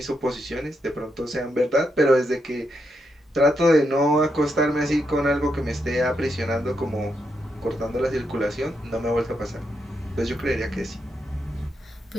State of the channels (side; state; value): both; normal; correlation 0.82